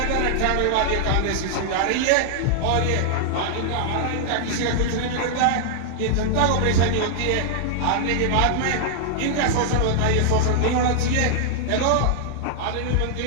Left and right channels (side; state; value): both; different; correlation -0.01